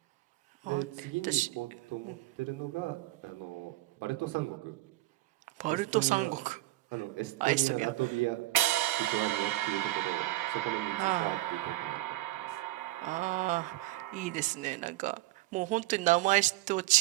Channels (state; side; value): quieter; left; 17.8 dB